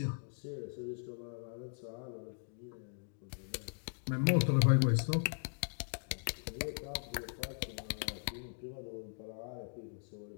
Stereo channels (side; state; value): right; silent; digital silence